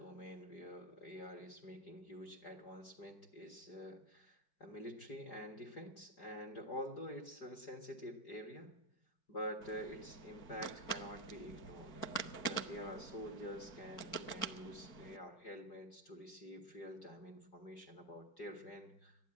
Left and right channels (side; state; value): right; late; 4.6 ms